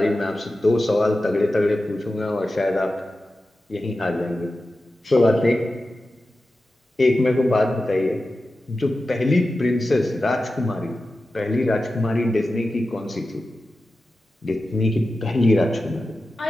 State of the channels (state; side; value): normal; both; correlation 0.93